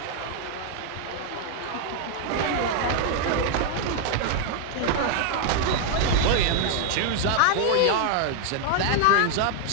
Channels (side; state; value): both; different; correlation 0.00